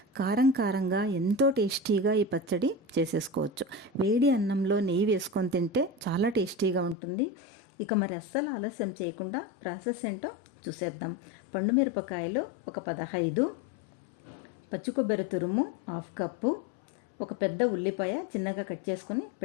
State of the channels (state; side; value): drops out; right; at 7.0 s